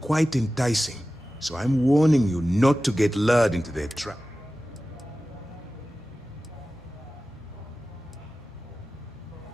enticing. So I'm warning you not to get lured into their trap.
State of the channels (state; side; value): normal; both; correlation 0.95